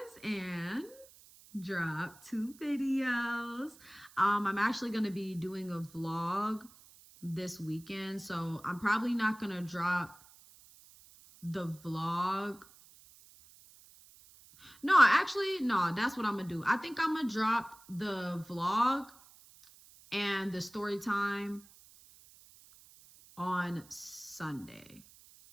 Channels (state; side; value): noise; right; hiss, 23 dB below the sound